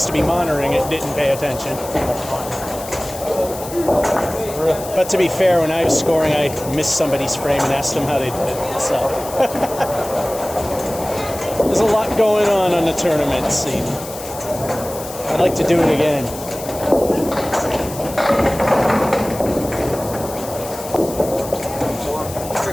to be monitoring it, didn't pay attention. But to be fair, when I was scoring, I missed somebody's frame and asked them how they did it. So there's a lot going on the tournament scene. I'd like to do it again.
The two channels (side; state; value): left; noise; hiss, 13 dB below the sound